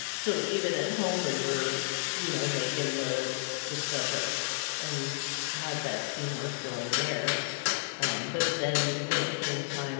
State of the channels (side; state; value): right; silent; digital silence